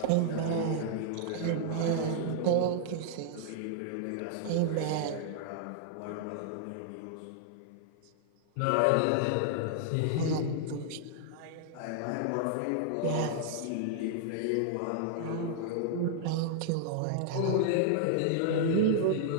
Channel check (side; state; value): both; different; correlation -0.01